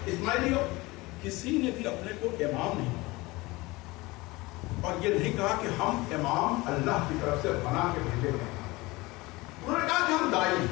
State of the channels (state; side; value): quieter; right; 22.0 dB